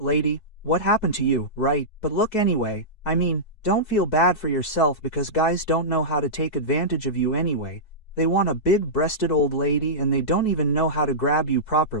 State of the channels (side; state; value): right; late; 4.7 ms